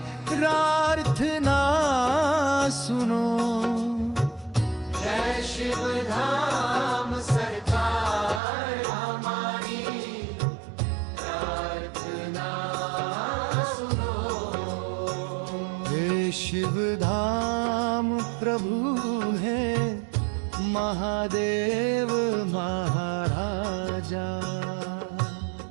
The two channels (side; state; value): left; drops out; at 8.4 s